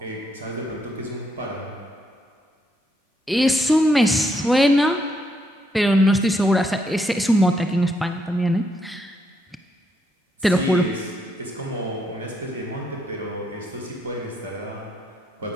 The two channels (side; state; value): both; normal; correlation 0.77